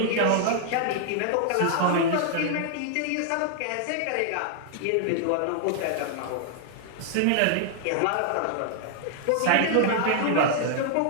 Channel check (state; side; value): different; both; correlation -0.01